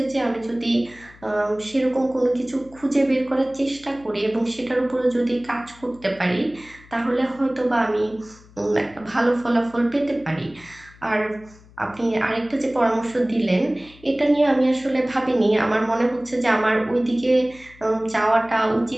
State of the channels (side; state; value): left; noise; hum, 24 dB below the sound